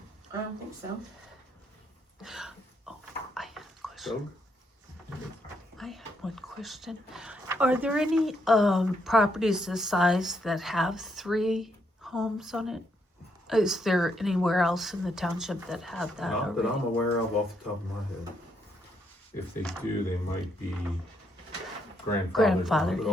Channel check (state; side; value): normal; both; correlation 0.75